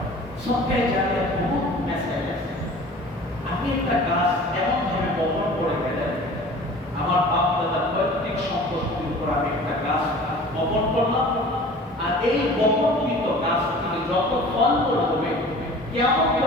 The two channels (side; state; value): both; normal; correlation 0.43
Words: সদকায়ে জারিয়া বহুত মেসেজ আছে। আপনি একটা গাছ এমন ভাবে বপন করে গেলেন, আমার বাপ দাদার পৈতৃক সম্পত্তির উপর আমি একটা গাছ বপন করলাম, আর এই বপনকৃত গাছ থেকে যত ফল হবে, কিয়ামত